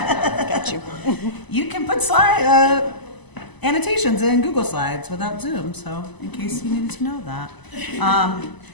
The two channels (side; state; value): right; late; 1.0 ms